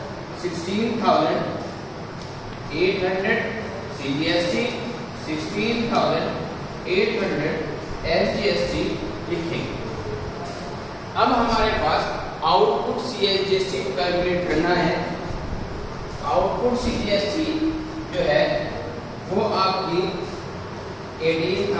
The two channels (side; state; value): both; identical; correlation 1.00